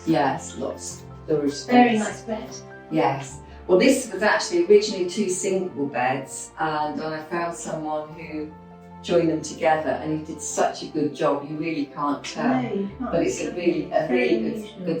Yes, lots of storage space. Very nice bed. Yes. Well, this was actually originally 2 single beds, and I found someone who joined them together, and he did such a good job. You really can't tell, No, you can't. but it's a really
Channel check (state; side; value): identical; both; correlation 1.00